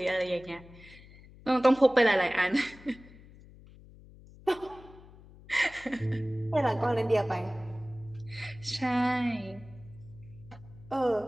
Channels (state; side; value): noise; left; hum, 21 dB below the sound